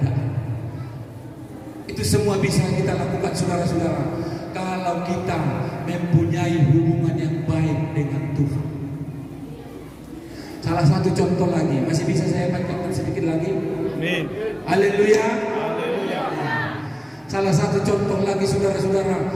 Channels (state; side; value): identical; both; correlation 1.00